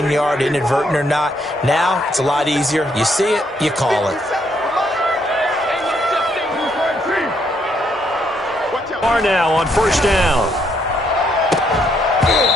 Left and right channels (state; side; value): normal; both; correlation 0.72